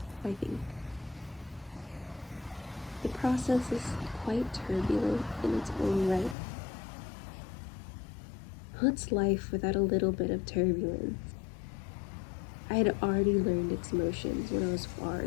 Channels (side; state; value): right; drops out; at 6.4 s